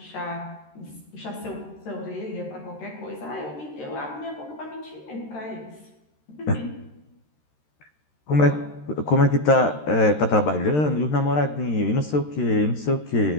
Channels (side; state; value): right; late; 13 ms